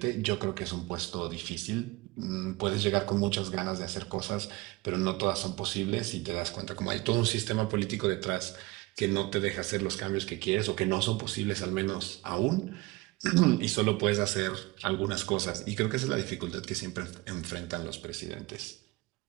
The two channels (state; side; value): quieter; left; 21.7 dB